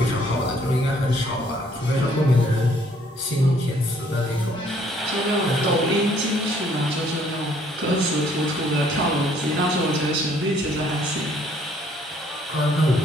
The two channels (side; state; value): both; normal; correlation 0.63